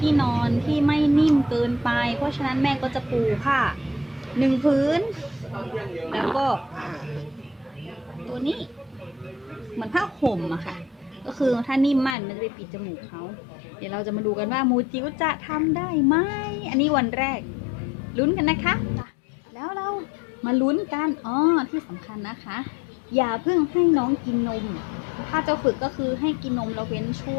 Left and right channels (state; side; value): drops out; right; at 12.2 s